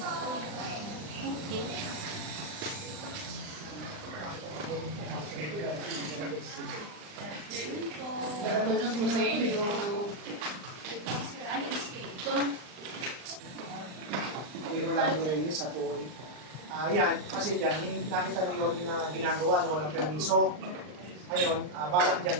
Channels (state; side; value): late; left; 39 ms